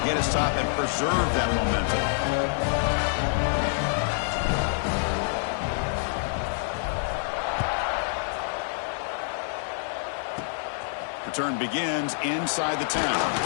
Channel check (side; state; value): right; silent; 60 dB below the other